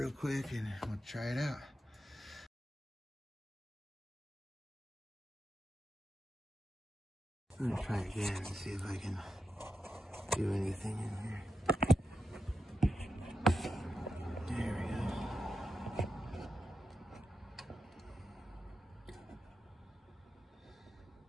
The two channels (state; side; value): normal; both; correlation 0.87